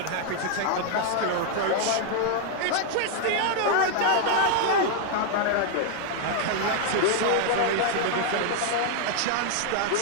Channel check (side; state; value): both; different; correlation 0.00